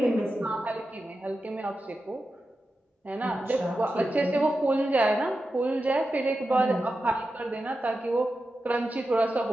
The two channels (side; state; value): both; normal; correlation 0.91